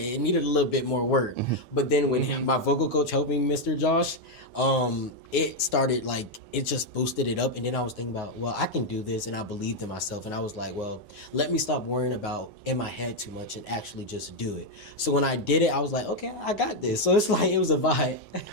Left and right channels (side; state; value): right; late; 10 ms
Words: needed a little bit more work. But then when my vocal coach helped me, Mr. Josh, it started, like, it just boosted it up. And then I was thinking about, well, I can do this. And I believed in myself. And I was like, well, let me stop worrying about in my head too much and actually just do it. So when I did it, I was like, okay, I got this. So it's like, it was a vibe.